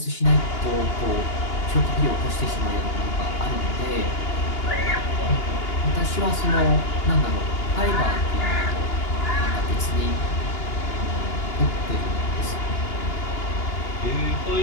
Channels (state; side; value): late; right; 2.9 ms